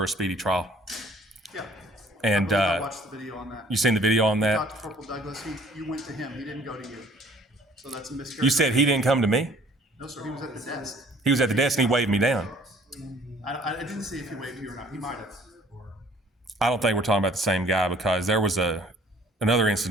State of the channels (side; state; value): both; normal; correlation 0.56